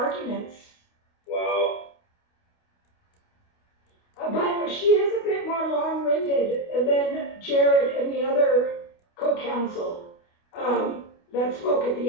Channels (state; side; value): late; right; 29 ms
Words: Wow. But she is a bit more long-winded than Jared and the other co-counsel that spoke at